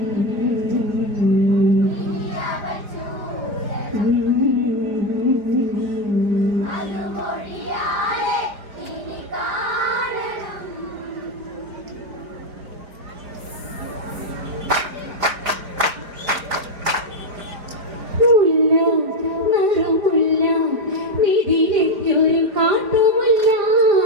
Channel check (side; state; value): left; late; 4.5 ms